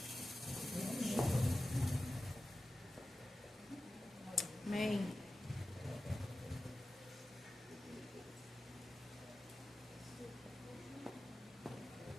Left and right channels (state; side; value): normal; both; correlation 0.94